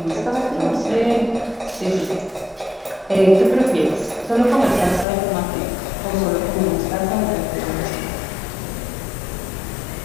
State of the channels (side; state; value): right; drops out; at 5.1 s